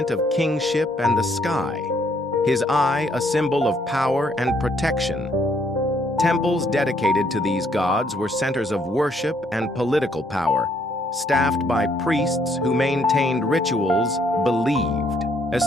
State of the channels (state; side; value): normal; both; correlation 0.69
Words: of kingship and the sky, his eye a symbol of power and protection. Temples dedicated to these gods were centers of worship and political power, staffed by priests who maintained rituals believed